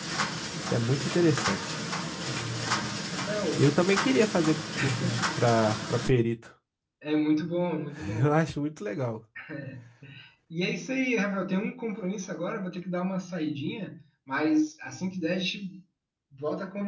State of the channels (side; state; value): both; identical; correlation 1.00